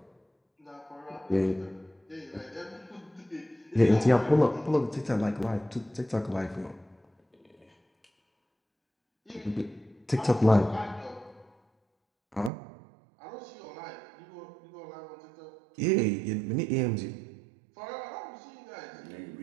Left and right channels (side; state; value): left; drops out; at 12.5 s